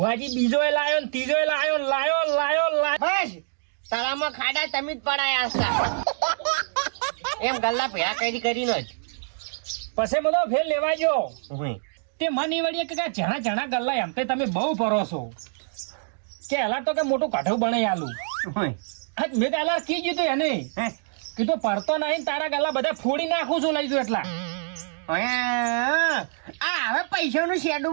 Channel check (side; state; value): left; silent; digital silence